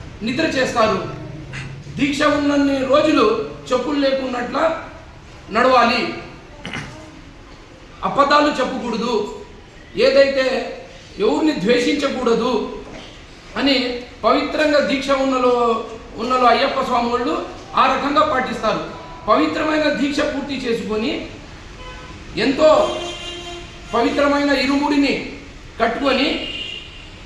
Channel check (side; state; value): both; identical; correlation 1.00